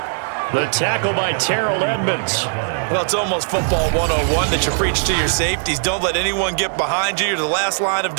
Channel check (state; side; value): silent; left; digital silence